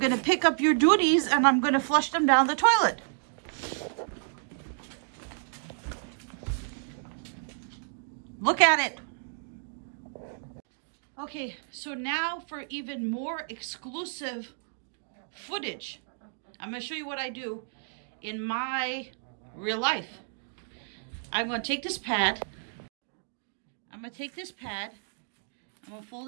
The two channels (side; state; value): left; silent; digital silence